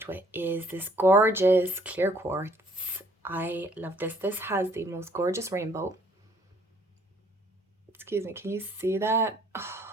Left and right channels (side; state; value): both; normal; correlation 0.62